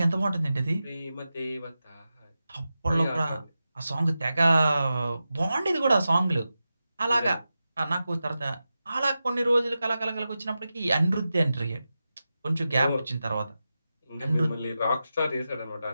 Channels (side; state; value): both; inverted; correlation -0.92